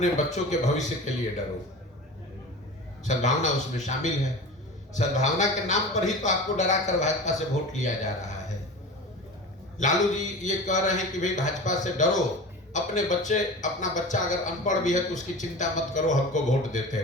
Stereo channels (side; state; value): both; normal; correlation 0.33